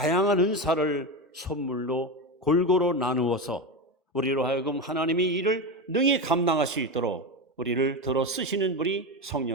은사를 선물로 골고루 나누어서 우리로 하여금 하나님의 일을 능히 감당할 수 있도록 우리를 들어 쓰시는 분이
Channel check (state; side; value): normal; both; correlation 0.18